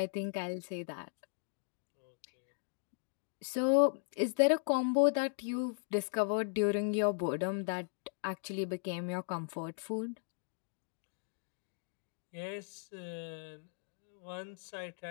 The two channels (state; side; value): silent; right; digital silence